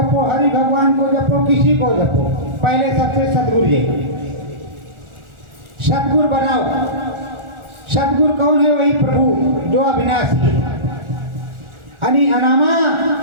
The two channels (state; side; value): late; left; 1.4 ms